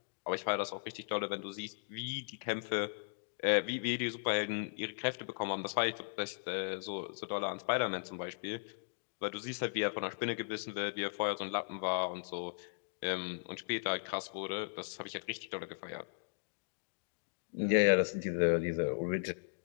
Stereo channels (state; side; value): silent; right; digital silence